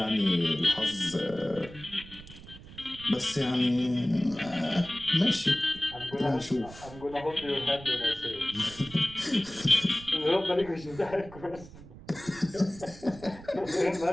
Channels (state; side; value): noise; right; rumble, 17 dB below the sound